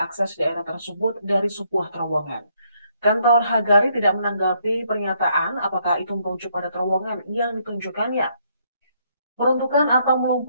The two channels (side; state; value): both; inverted; correlation -0.71